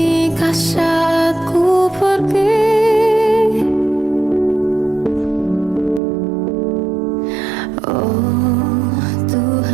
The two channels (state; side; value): drops out; left; at 6.0 s